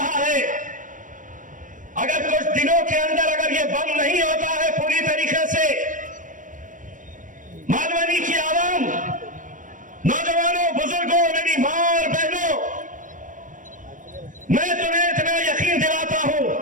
है। अगर कुछ दिनों के अंदर अगर ये बंद नहीं होता है पूरी तरीके से, मालवनी की आवाम, नौजवानों, बुजुर्गों, मेरी मां और बहनों, मैं तुम्हें इतना यकीन दिलाता हूं,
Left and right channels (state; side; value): late; left; 0.38 ms